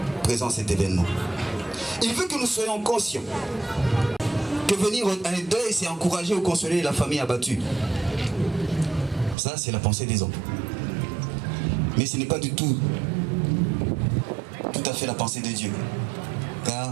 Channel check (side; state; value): left; drops out; at 9.3 s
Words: présent cet événement. Il veut que nous soyons conscients que venir à un deuil, c'est encourager ou consoler la famille abattue. Ça, c'est la pensée des hommes. Mais ce n'est pas du tout à fait la pensée de Dieu. Car